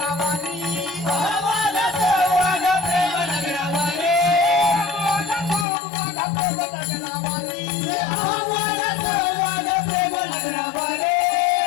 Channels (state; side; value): drops out; right; at 5.7 s